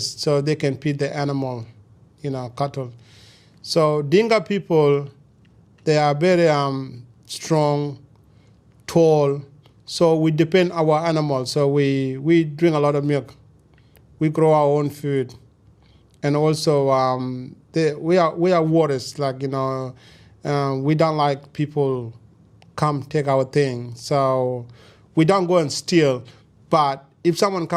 so they can feed the animal, cattle. So Dinka people, they are very strong, tall, so we depend on our animals. So we drink a lot of milk. We grow our own food. And also, we are warriors, we don't like people come take our thing. So we don't go and steal, but if someone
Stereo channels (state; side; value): identical; both; correlation 1.00